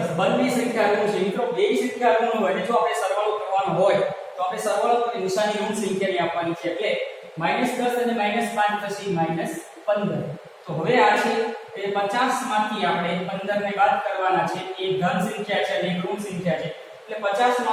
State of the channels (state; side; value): identical; both; correlation 1.00